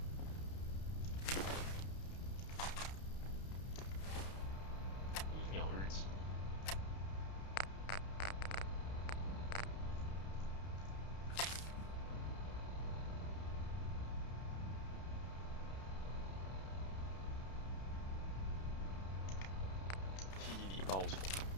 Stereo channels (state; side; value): late; right; 31 ms